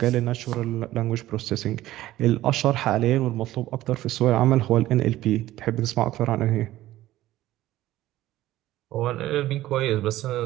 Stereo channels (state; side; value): quieter; left; 15.2 dB